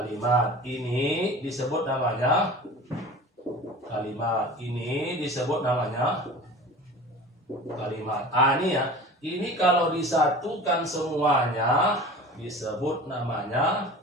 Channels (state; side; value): normal; both; correlation 0.38